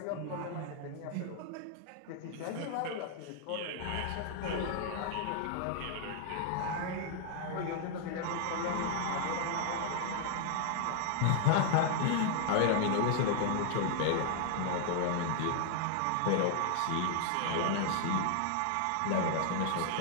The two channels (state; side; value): different; both; correlation 0.00